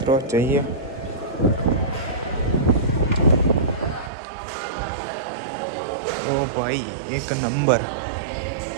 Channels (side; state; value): left; drops out; at 4.1 s